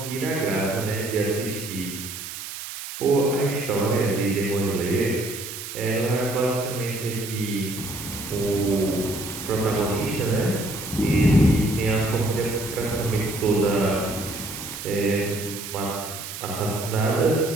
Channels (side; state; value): right; noise; hiss, 9 dB below the sound